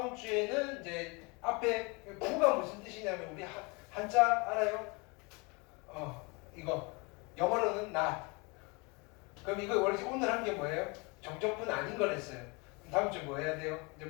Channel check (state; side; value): quieter; right; 29.0 dB